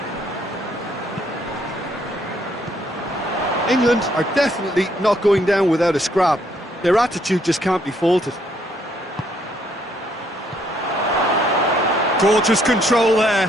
England are definitely not going down without a scrap. Their attitude just can't be faulted. Gorgeous control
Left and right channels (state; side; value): normal; both; correlation 0.69